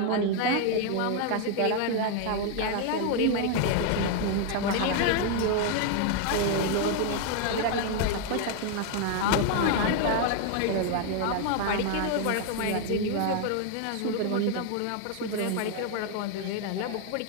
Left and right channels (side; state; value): both; different; correlation 0.00